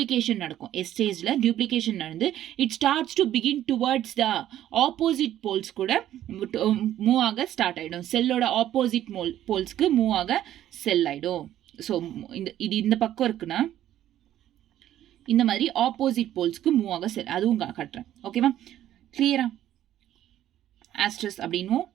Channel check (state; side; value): quieter; left; 12.2 dB